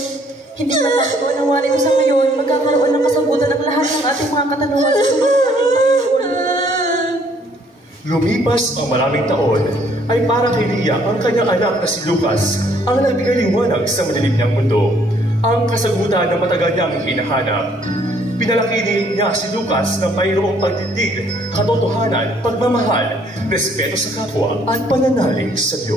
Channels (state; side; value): normal; both; correlation 0.63